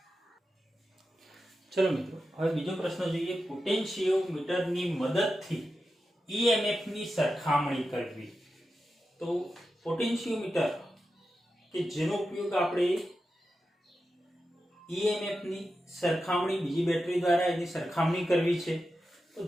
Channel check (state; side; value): normal; both; correlation 0.90